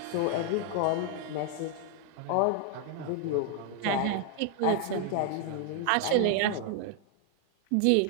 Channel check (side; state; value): both; different; correlation 0.00